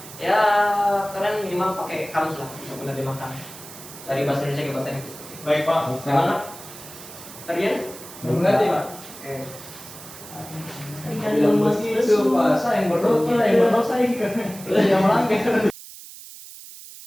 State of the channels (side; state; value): right; noise; hiss, 16 dB below the sound